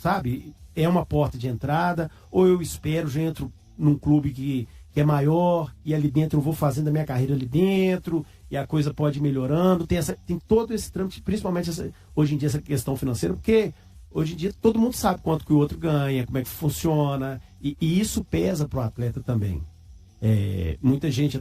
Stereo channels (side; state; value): both; identical; correlation 1.00